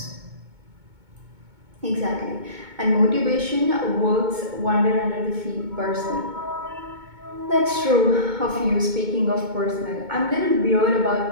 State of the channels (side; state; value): left; late; 2.2 ms